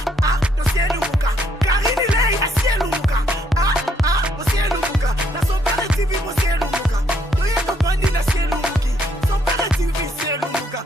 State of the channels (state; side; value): normal; both; correlation 0.70